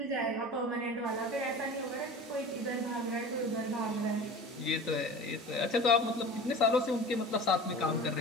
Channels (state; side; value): normal; both; correlation 0.37